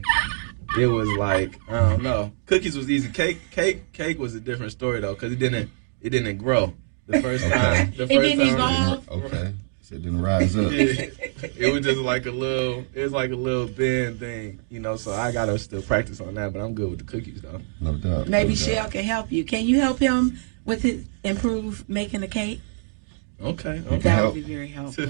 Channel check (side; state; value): left; silent; digital silence